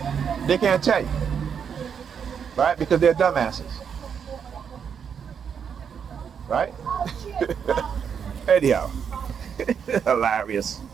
They can't tell you. Right? Because they're dumbasses. Right? Anyhow. Hilarious.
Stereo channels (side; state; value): left; quieter; 7.3 dB